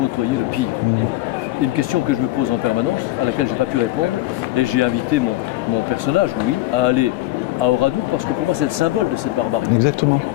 le pire? Une question que je me pose en permanence, à laquelle je n'ai pas pu répondre, et j'ai invité mon personnage, Louis, à aller à Oradour, parce que pour moi c'est le symbole de cette barbarie. Exactement.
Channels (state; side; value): quieter; right; 16.8 dB